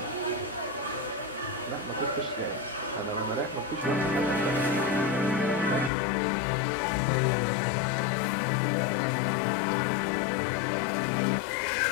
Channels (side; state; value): right; drops out; at 5.9 s